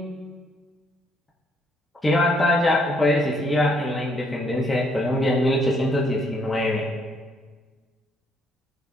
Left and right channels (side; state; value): both; normal; correlation 0.69